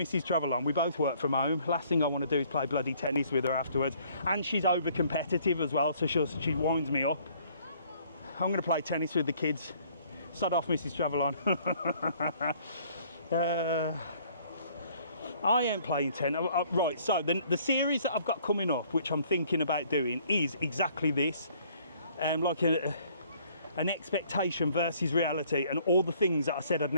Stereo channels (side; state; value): both; inverted; correlation -0.60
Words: Travel On. We both work from home. Last thing I want to do is play bloody tennis with her afterwards. And she's over competitive as well, so she winds me up. I'm going to play tennis with the kids. Sod off, Mrs. Travel On. I am playing tennis. Right, so the series that I've got coming up, which I'm thinking about doing, is exactly this. Like an expectation versus reality and all the things that I said I'd